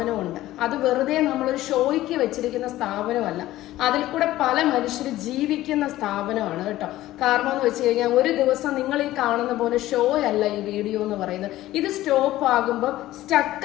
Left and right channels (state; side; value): quieter; right; 15.4 dB